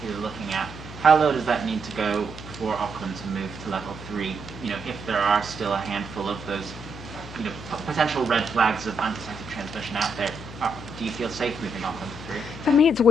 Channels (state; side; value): noise; left; hum, 13 dB below the sound